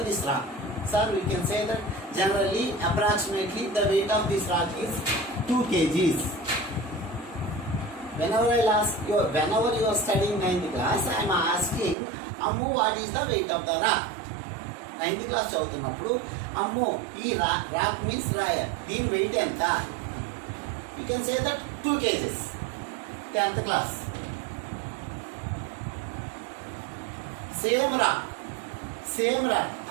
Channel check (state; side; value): drops out; left; at 12.0 s